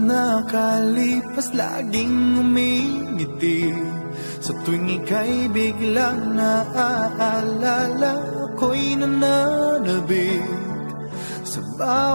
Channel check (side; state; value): both; inverted; correlation -1.00